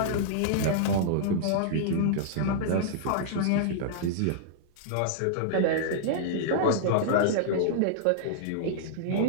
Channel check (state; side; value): different; both; correlation -0.02